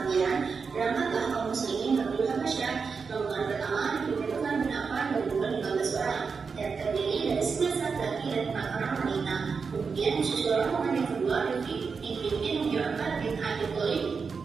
berangkatlah kaum muslimin menuju Habasyah. Rombongan pertama dipimpin bin Affan dan jumlah 15 orang dan terdiri dari 11 laki dan 4 orang wanita. Kemudian disusul rombongan yang kedua dipimpin Ja'far bin Abi Thalib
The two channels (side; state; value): left; quieter; 5.3 dB